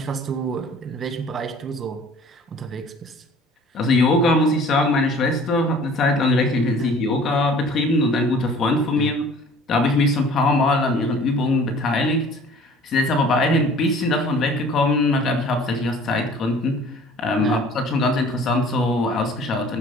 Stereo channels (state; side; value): normal; both; correlation 0.50